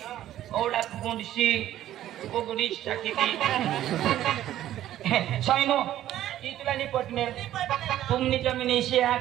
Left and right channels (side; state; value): left; quieter; 12.8 dB